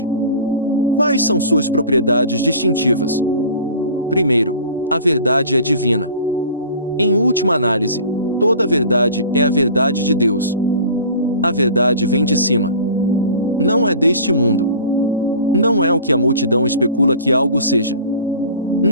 Quais são suas propriedades distintivas? Primeiro, a verdade é divina. Em última análise, toda a verdade é a verdade de Deus. A verdade vem de cima. Não é deste mundo. Não é o que a multidão especula que algo seja.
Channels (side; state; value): both; inverted; correlation -0.43